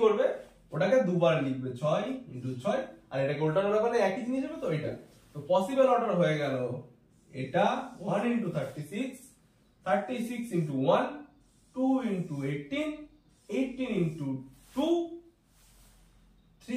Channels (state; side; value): identical; both; correlation 1.00